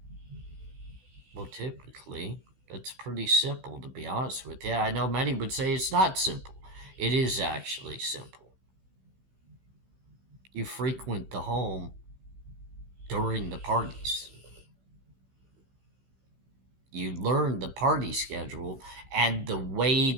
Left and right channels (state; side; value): late; left; 16 ms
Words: Well, typically, that's pretty simple, to be honest with you. I know many would say it's not simple. It is actually simple. You frequent the home during the parties. You learn the party schedule and the way